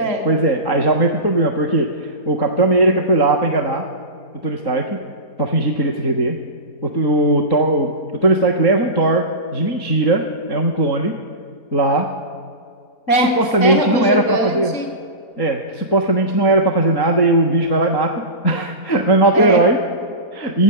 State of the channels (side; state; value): right; late; 3.8 ms